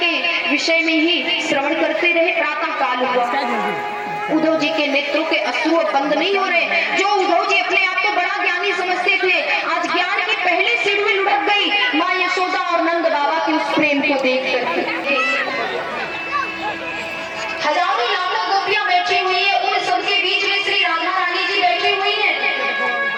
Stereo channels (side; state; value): both; identical; correlation 1.00